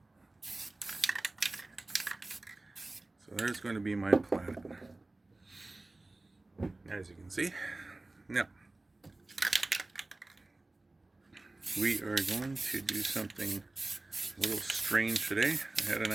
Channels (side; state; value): left; quieter; 3.0 dB